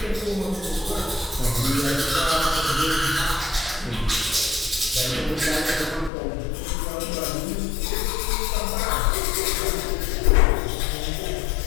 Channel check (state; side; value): drops out; right; at 6.1 s